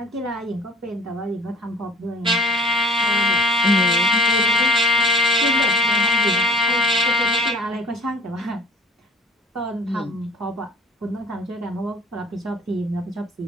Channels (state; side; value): normal; both; correlation 0.48